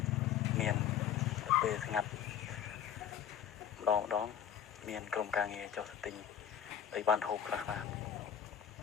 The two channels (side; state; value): right; quieter; 9.1 dB